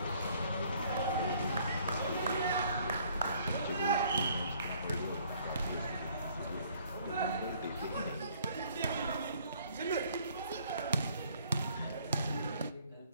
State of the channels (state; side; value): inverted; both; correlation -0.61